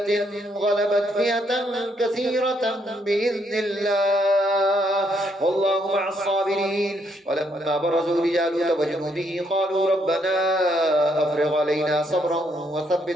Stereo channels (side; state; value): both; normal; correlation 0.73